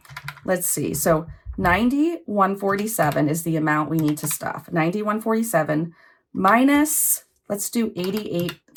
let's see. So 9147 is the amount we need to stuff. 9147 minus, let's do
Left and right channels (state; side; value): identical; both; correlation 1.00